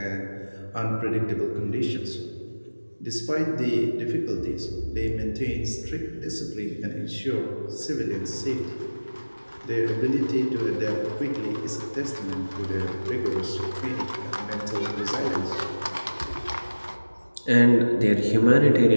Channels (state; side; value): inverted; both; correlation -1.00